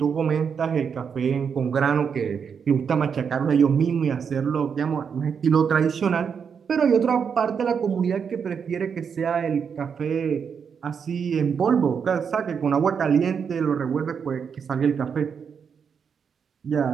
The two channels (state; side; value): quieter; left; 6.7 dB